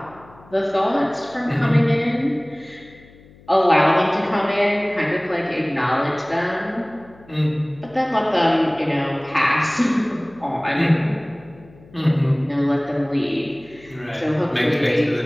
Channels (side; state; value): left; noise; hum, 25 dB below the sound